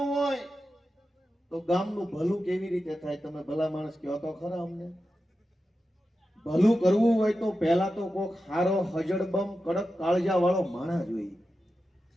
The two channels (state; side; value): normal; both; correlation 0.91